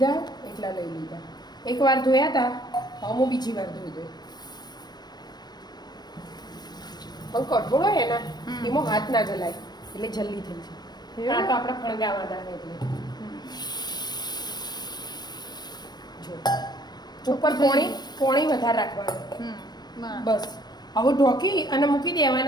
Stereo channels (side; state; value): right; late; 0.20 ms